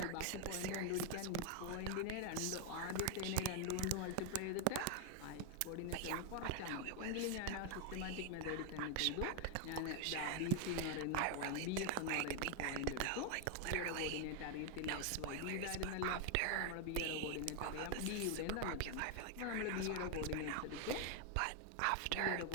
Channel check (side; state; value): both; different; correlation 0.01